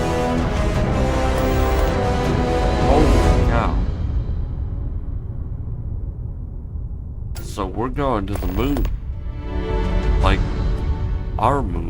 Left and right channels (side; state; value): both; identical; correlation 1.00